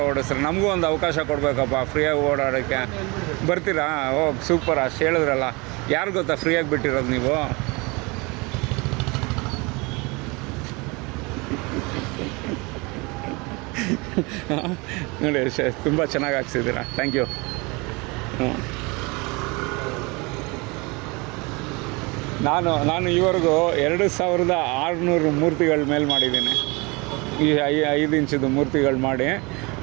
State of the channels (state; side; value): quieter; left; 26.7 dB